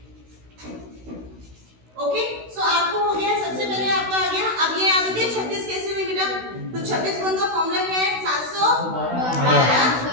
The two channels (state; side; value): late; left; 16 ms